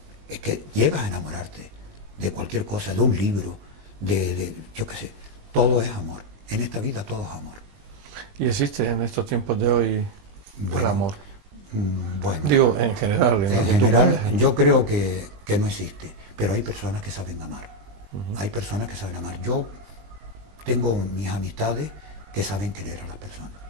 que llegas a enamorarte de cualquier cosa, de un libro, yo qué sé, todo es amor. En esta vida todo es amor. ¿Y existe en estos tiempos de hoy el amor? Bueno. Digo, en general. En general, yo creo que no existe, pero hay personas que saben amar. Hay personas que saben amar. Yo tengo mis amistades que saben querer a las personas.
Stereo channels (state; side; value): late; left; 20 ms